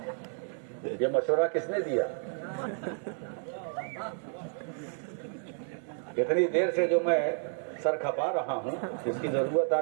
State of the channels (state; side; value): silent; left; 57 dB below the other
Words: یہ مشورہ کس نے دیا؟ اتنی دیر سے جو میں سر کھپا رہا ہوں اس کی ضرورت